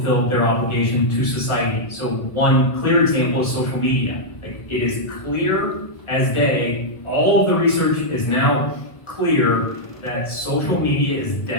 their obligation to society. So one clear example is social media. Like, it is clear as day, all of the research is now clear that social media is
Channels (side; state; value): right; late; 1.4 ms